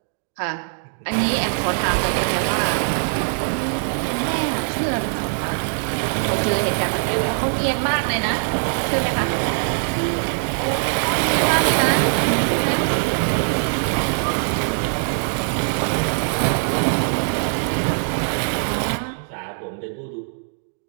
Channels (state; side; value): silent; left; 62 dB below the other